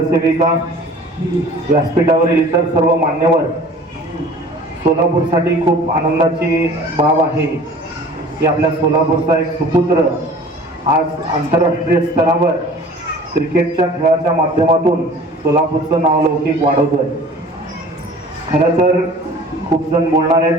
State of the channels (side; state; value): both; normal; correlation 0.46